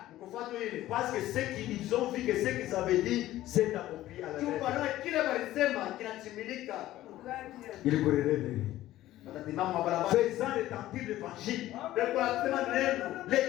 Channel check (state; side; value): quieter; right; 14.8 dB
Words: Parce que ce qu'ils ont vu, que ce qu'ils avaient dit, s'est accompli à la lettre. Kile walisema kinatimilika. Ils courraient les rues. Watasimama mabarabara. Faisant retentir l'évangile. Wanasema neno.